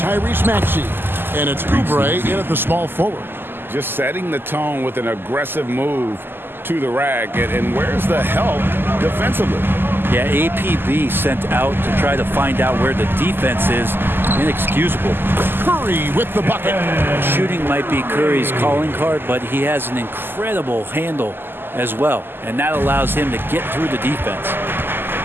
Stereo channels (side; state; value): left; late; 0.098 ms